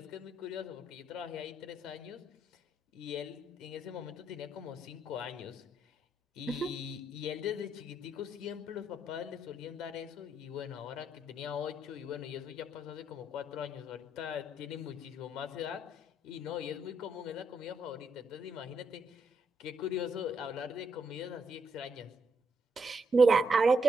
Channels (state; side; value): normal; both; correlation 0.77